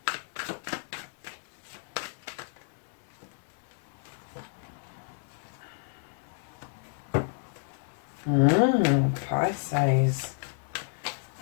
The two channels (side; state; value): right; silent; digital silence